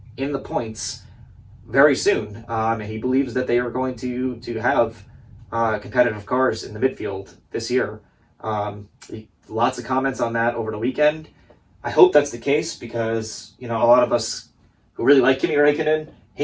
in the points very soon. And he believes that they are going to have competitive cars in the midfield this year. Lots of comments on that over the weekend. I hope that's the case because, a lot of us who really like Kimi Raikkonen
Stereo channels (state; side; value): identical; both; correlation 1.00